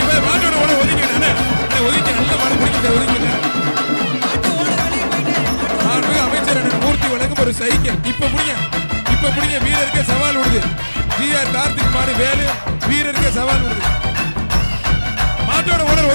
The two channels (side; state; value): both; inverted; correlation -1.00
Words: மாட்டோட ஓட ஒதுக்கினே ஒதுக்கி நல்ல மாடு பிடிக்கிட்ட ஒதுக்கினேன் அமைச்சர் மூர்த்தி வழங்கும் ஒரு சைக்கிள் இப்ப புடிங்க வீரருக்கு சவால் விடுது ஜி.ஆர். கார்த்திக் மாடு வேலு வீரருக்கு சவால் விடுது மாட்டோட ஓனர்